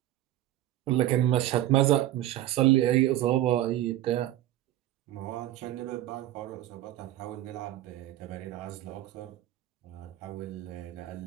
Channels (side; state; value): left; quieter; 13.9 dB